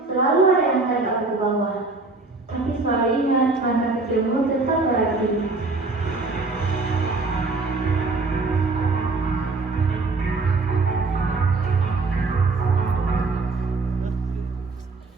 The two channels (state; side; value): quieter; left; 3.6 dB